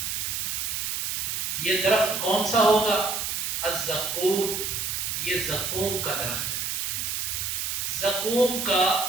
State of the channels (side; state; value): right; noise; hiss, 1 dB below the sound